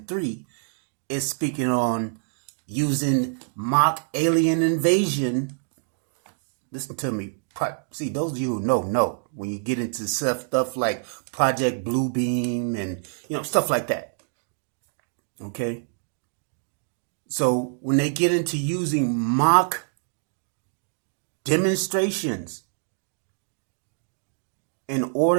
3, is speaking on using mock alien invasion. Listen to me. See, those of you who know when you get into stuff like Project Bluebeam and stuff like that. Okay? So when they get into using mock demonstrations in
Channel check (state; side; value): silent; left; digital silence